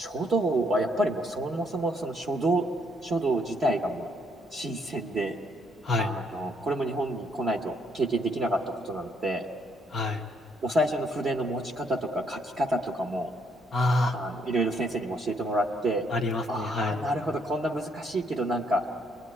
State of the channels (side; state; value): both; normal; correlation 0.71